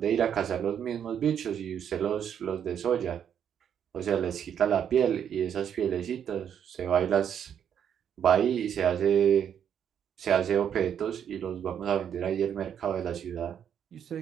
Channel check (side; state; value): left; quieter; 8.7 dB